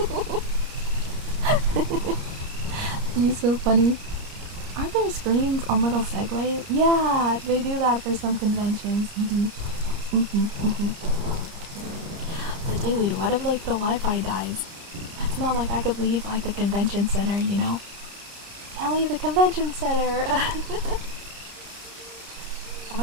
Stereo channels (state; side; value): late; left; 30 ms